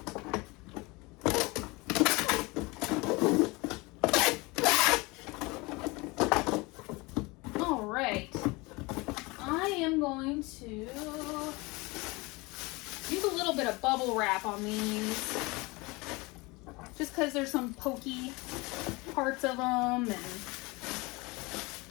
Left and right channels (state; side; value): quieter; right; 24.7 dB